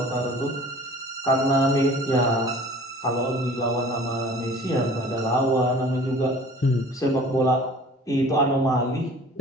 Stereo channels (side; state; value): both; normal; correlation 0.47